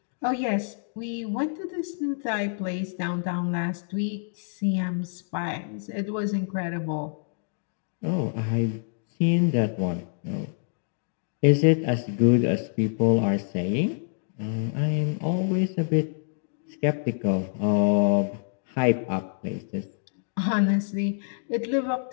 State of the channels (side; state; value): right; silent; digital silence